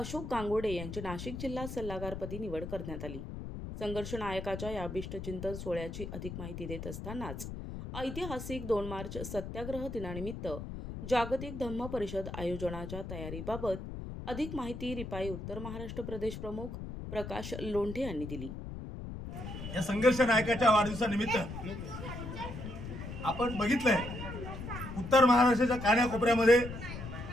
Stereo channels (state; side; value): noise; left; rumble, 8 dB below the sound